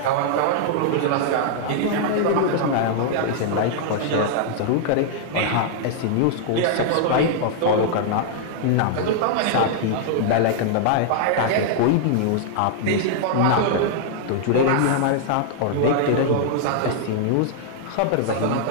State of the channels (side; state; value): both; different; correlation -0.01